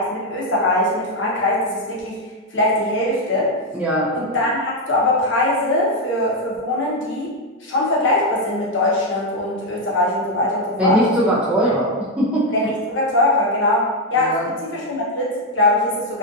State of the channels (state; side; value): normal; both; correlation 0.04